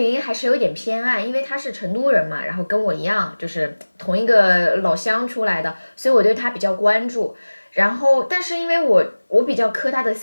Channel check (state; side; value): inverted; both; correlation -1.00